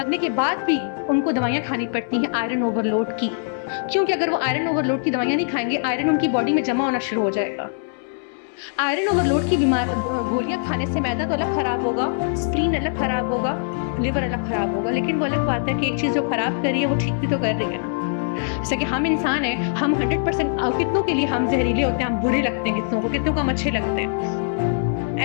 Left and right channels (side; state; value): right; silent; 62 dB below the other